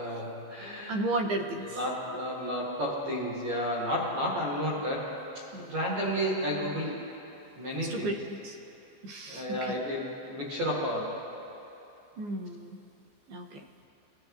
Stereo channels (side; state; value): left; late; 15 ms